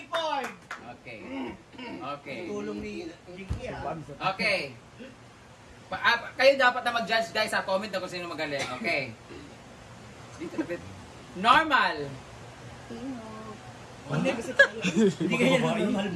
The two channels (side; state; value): both; identical; correlation 1.00